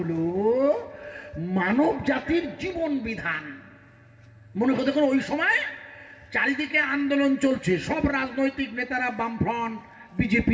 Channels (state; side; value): identical; both; correlation 1.00